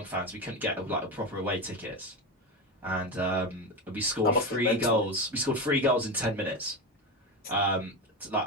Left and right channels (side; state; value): both; normal; correlation 0.18